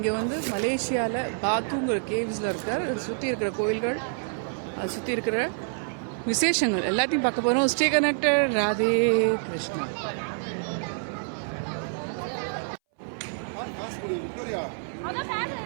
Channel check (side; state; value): left; silent; 60 dB below the other